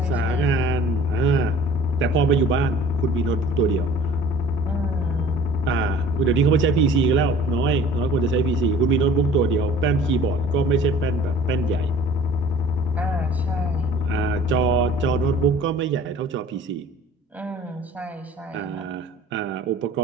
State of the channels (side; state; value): both; normal; correlation 0.49